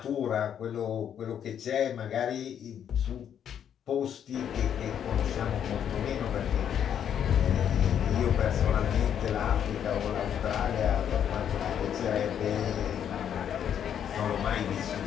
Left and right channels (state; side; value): quieter; right; 9.1 dB